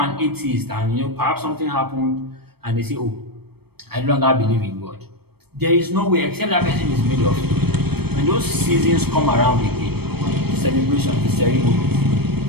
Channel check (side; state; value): left; late; 0.97 ms